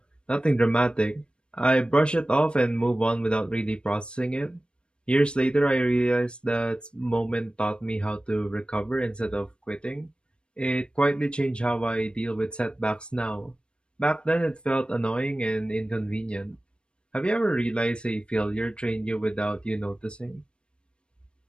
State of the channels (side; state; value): right; late; 0.055 ms